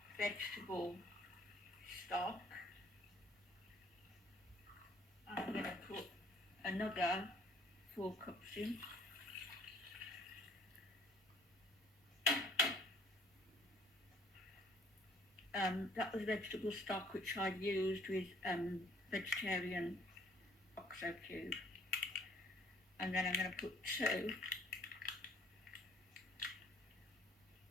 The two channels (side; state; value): both; normal; correlation 0.58